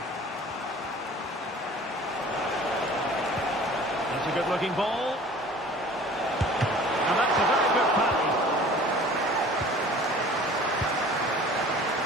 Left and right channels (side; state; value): both; normal; correlation 0.46